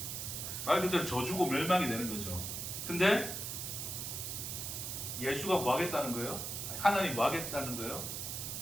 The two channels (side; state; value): right; noise; hiss, 4 dB below the sound